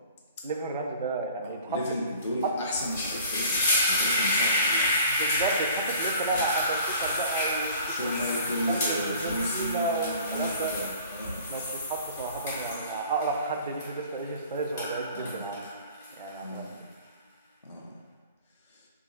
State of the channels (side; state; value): both; inverted; correlation -0.48